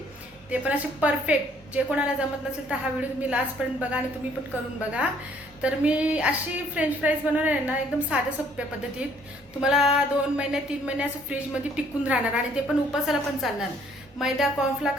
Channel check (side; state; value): both; normal; correlation 0.62